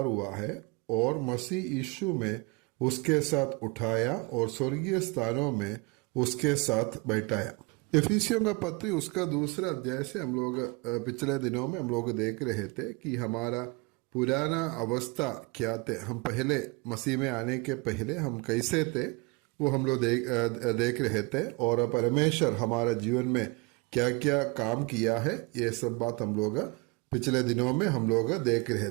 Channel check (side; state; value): left; quieter; 27.2 dB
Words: हुआ है, और मसीह यीशु में उसके साथ उठाया और स्वर्गीय स्थानों में उसके साथ बैठाया। इफिसियों का पत्री उसका दूसरा अध्याय से हम लोग पिछले दिनों में हम लोग देख रहे थे कि हमारा पुराना अवस्था क्या थे। हम पहले मसीह में आने के पहले हम कैसे थे वो हम लोग देख रहे थे, और परमेश्वर हमारा जीवन में क्या क्या काम किया है ये सब बात हम लोग पिछले दिनों में हम लोग देख रहे